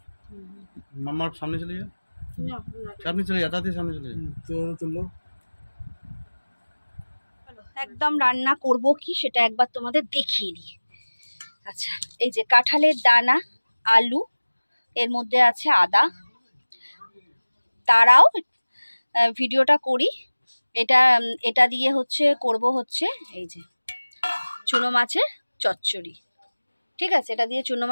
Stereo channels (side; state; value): both; inverted; correlation -1.00